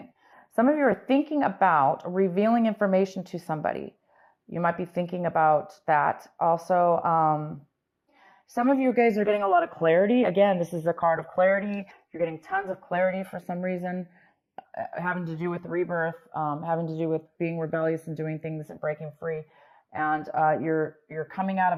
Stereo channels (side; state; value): both; identical; correlation 1.00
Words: Some of you are thinking about revealing information to somebody. You might be thinking about that. Also, some of you guys are getting a lot of clarity. Again, this is a card of clarity. You're getting tons of clarity for some reason, having to do with rebirth, having to do with being rebellious and doing things and breaking free. And you're coming out